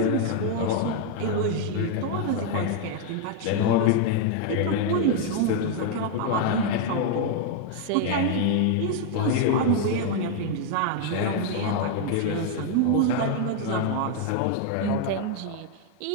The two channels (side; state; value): both; different; correlation 0.00